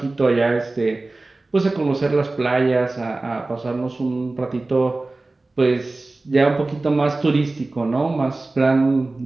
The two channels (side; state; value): left; quieter; 3.2 dB